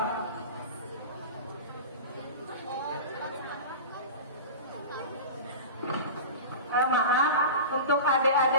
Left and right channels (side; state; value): both; inverted; correlation -0.31